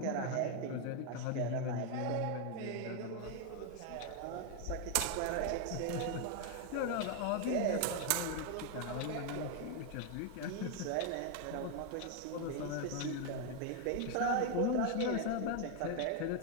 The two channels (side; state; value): both; different; correlation 0.01